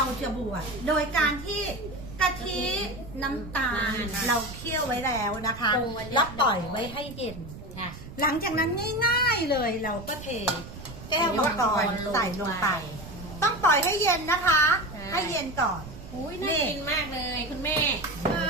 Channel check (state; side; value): noise; right; rumble, 14 dB below the sound